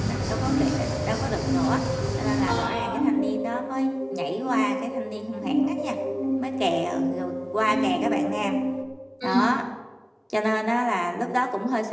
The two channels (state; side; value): identical; both; correlation 1.00